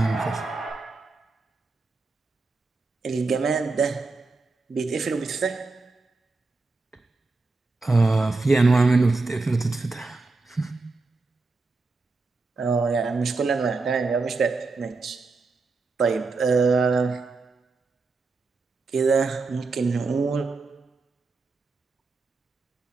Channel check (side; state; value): left; quieter; 3.8 dB